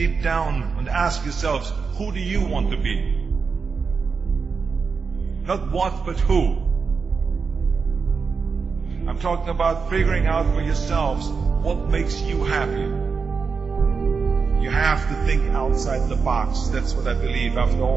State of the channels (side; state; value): left; quieter; 5.2 dB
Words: down and ask yourselves, who do you want to be? Not what, but who. I'm talking about figuring out for yourselves what makes you happy. You have to think outside the box. That's what I believe. After